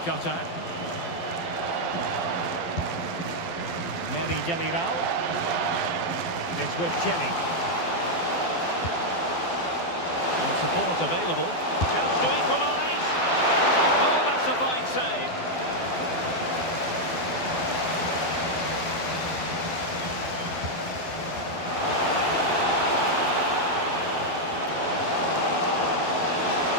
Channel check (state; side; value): late; right; 12 ms